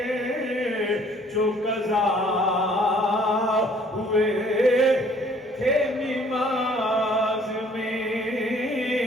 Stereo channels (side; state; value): both; normal; correlation 0.58